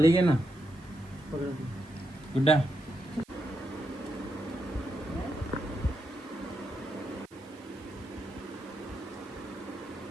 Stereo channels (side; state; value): right; noise; hiss, 27 dB below the sound